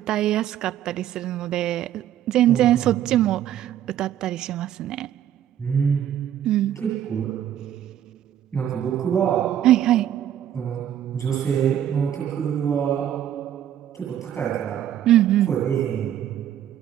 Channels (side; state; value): left; quieter; 10.8 dB